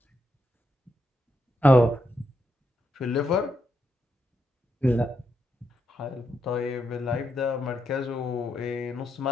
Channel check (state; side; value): normal; both; correlation 0.81